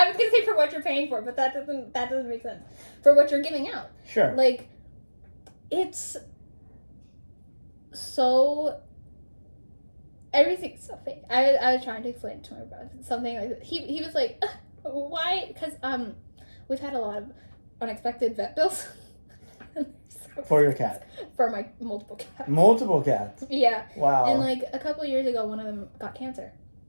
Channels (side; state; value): both; inverted; correlation -1.00